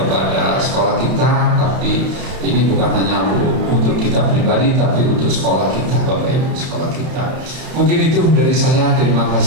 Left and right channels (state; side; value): late; left; 31 ms